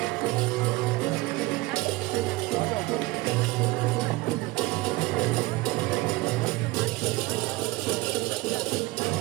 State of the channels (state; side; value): quieter; left; 21.0 dB